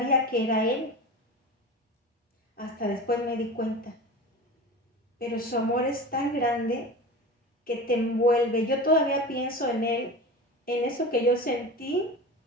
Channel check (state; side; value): normal; both; correlation 0.31